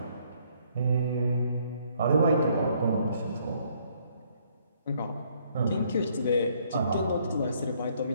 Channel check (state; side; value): inverted; both; correlation -0.66